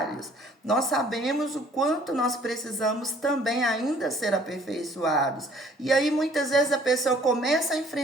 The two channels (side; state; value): both; normal; correlation 0.57